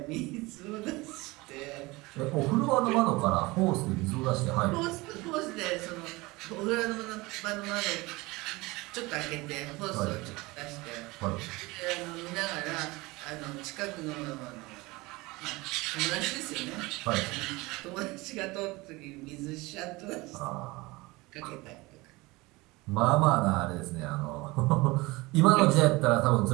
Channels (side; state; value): left; quieter; 22.5 dB